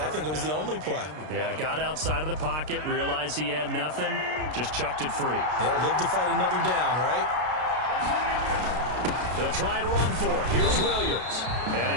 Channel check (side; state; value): left; late; 33 ms